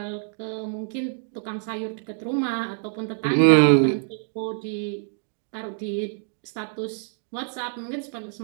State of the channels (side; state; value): left; silent; 61 dB below the other